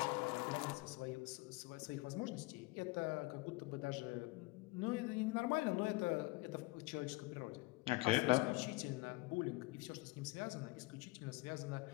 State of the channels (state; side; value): quieter; right; 22.6 dB